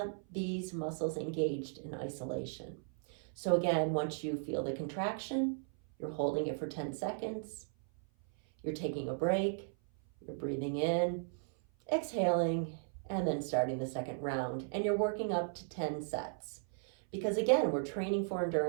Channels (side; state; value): left; silent; 54 dB below the other